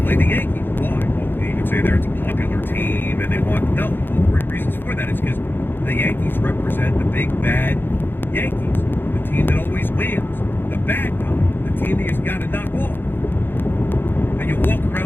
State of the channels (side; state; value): right; late; 0.10 ms